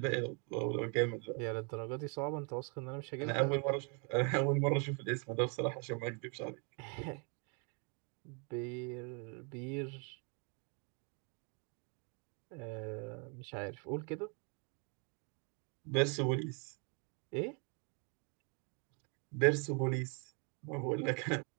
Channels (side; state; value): left; quieter; 36.4 dB